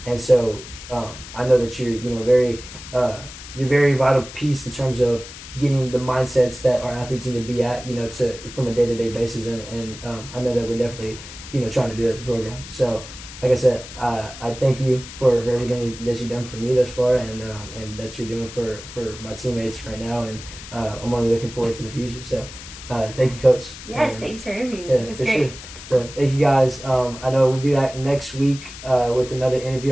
And so I know that you're, you know, you're very vital piece in terms of getting the mindsets that our athletes need to be at, you know, from a day-to-day basis. And I know that we're definitely, you know, trying to do this program. So, like I said, I thank you for everything that you've done for me thus far, and that you're doing for my teammates right now, and I'm only looking forward to the future. So, thank you, Coach. Yes, thanks for interviewing me. Yeah, it's for great. sure. So, thank you guys. I know we'll be back next week with another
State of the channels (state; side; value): noise; left; hiss, 14 dB below the sound